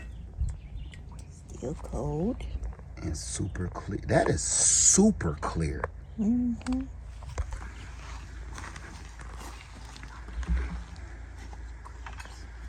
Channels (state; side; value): identical; both; correlation 1.00